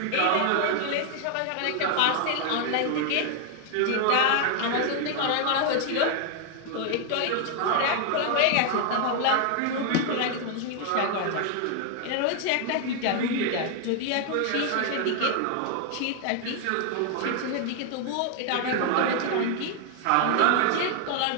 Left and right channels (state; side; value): different; both; correlation 0.00